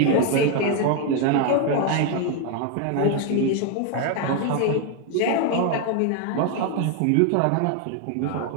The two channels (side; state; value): both; different; correlation 0.01